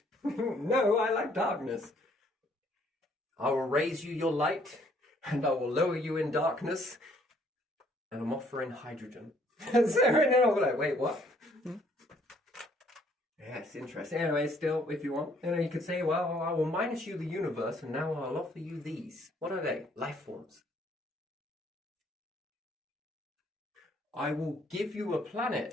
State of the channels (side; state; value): both; normal; correlation 0.64